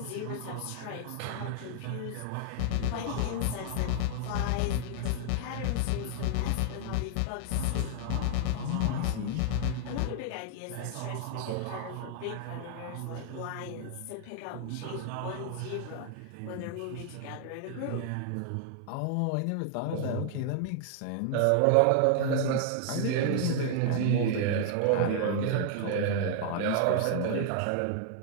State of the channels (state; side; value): different; both; correlation 0.00